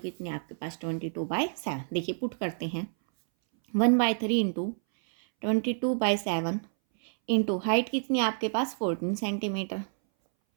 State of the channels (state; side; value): silent; left; 59 dB below the other